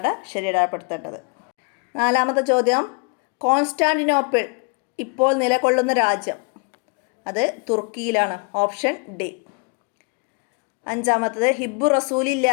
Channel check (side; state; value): right; quieter; 35.6 dB